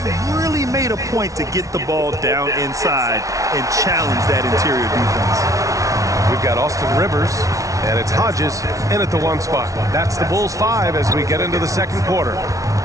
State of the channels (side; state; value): left; late; 0.16 ms